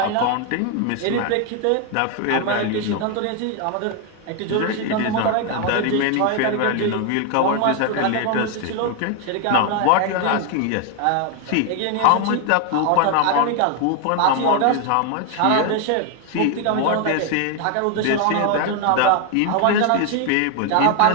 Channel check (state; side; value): different; both; correlation 0.01